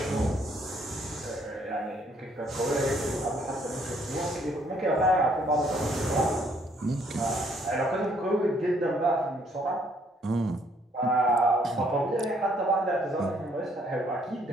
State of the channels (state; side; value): normal; both; correlation 0.66